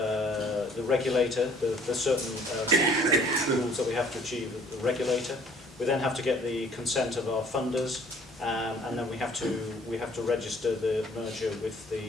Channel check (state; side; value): normal; both; correlation 0.57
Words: regulator. There's certain rules that we have to achieve with the regulator. We then have to get the consent of our funders, and then we have to register the merger with